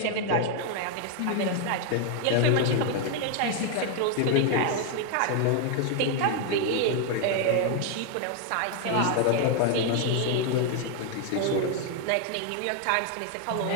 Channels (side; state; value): both; different; correlation 0.00